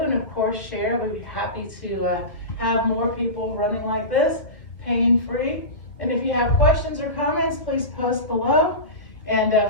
And of course, share. We'd be happy to have more people running like this, pain-free. And if you have questions or comments, please post below. And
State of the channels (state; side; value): late; right; 1.4 ms